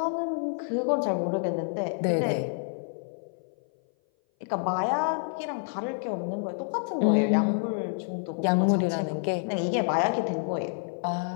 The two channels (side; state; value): right; silent; 57 dB below the other